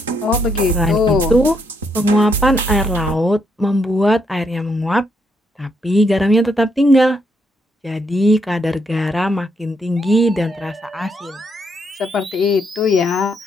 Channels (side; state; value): both; normal; correlation 0.76